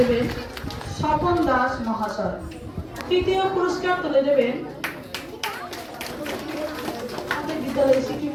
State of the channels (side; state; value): both; identical; correlation 1.00